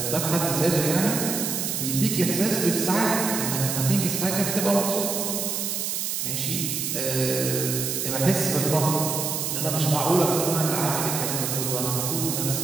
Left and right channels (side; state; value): right; noise; hiss, 1 dB below the sound